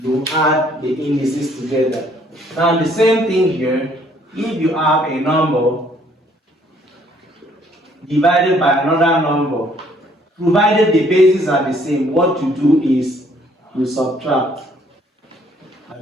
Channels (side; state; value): both; normal; correlation 0.63